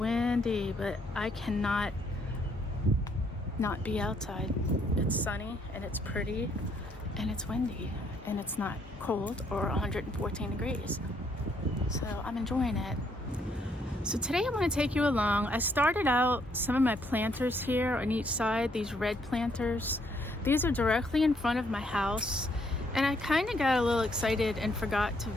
but I cannot not be outside. It's sunny and it's pretty and it's windy and it's not cold or 114 degrees. So I'm enjoying it. So today I'm going to take you along. I started out some of my planters here on each side, these red planters. These are directly in front of my house, and I kind of got a little excited and forgot to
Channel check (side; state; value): both; normal; correlation 0.70